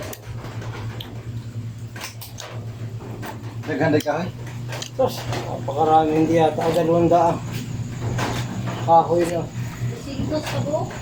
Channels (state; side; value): identical; both; correlation 1.00